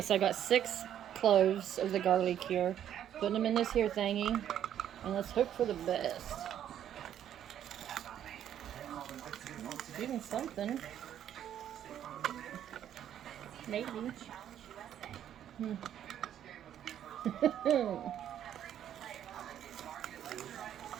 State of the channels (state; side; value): quieter; left; 10.4 dB